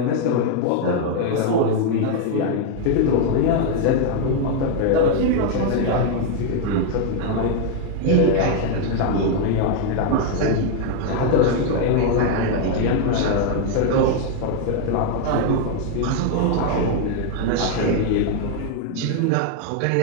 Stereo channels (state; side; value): different; both; correlation 0.00